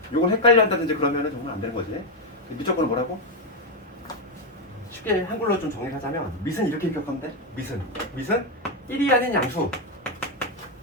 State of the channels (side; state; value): both; normal; correlation 0.05